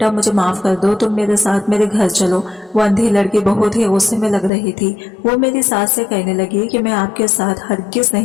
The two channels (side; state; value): right; drops out; at 4.5 s